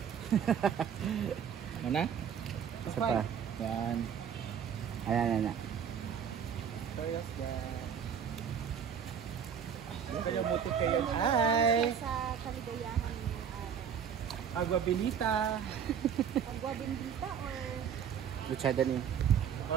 Mana? Isa pa. Yan. Ayan. Kaya mo kayo. Hi! Sa kaligayahan ng araw. Agua Benita. Agua bendita or Luchada ni.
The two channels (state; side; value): quieter; left; 8.0 dB